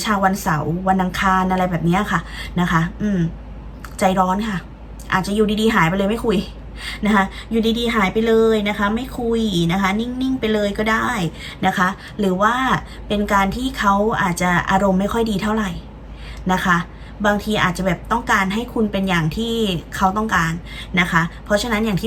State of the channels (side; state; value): both; identical; correlation 1.00